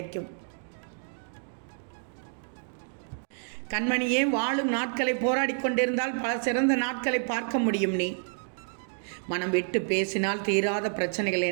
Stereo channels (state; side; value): silent; left; 58 dB below the other